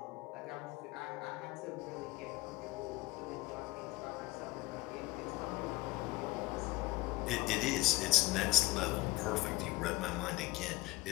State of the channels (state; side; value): quieter; right; 20.0 dB